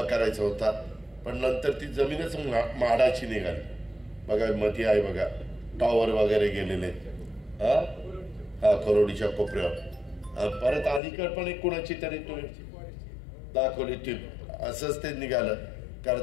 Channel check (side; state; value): right; drops out; at 11.0 s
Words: करायचा होता, पण नंतर ती जमीनच म्हाडाची निघाली. बघा मध्ये आहे बघा, टॉवर वगैरे गेलेले हा करोडीच्या कोपऱ्यावर. परत अलीकड पण एक कुणाची तरी तुम्ही दाखवली टीप, असंच ते निघालं.